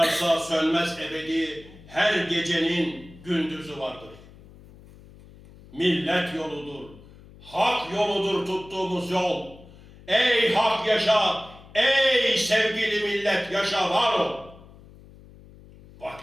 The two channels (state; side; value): noise; left; hum, 21 dB below the sound